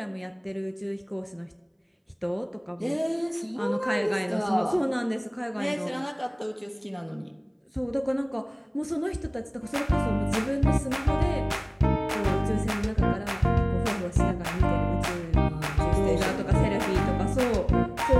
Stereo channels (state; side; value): identical; both; correlation 1.00